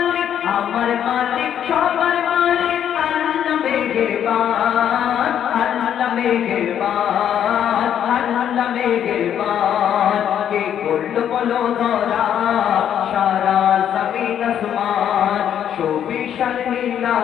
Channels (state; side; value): quieter; right; 9.6 dB